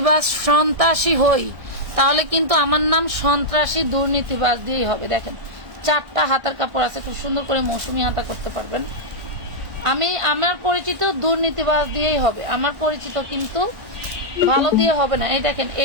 সন্ত্রাসী হই, তাহলে কিন্তু আমার নাম সন্ত্রাসী দুর্নীতিবাজ দিয়েই হবে। দেখেন, 4টা হাতার কাপড় আছে, খুব সুন্দর করে মৌসুমি হাতা করতে পারবেন। আমার পরিচিত দুর্নীতিবাজ দিয়েই হবে, আমার পরিচিত কিন্তু ভালো দিয়ে হবে না। এই দেখেন,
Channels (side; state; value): left; late; 1.5 ms